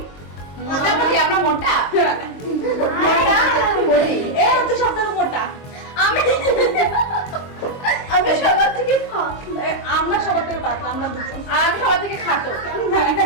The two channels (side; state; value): right; late; 22 ms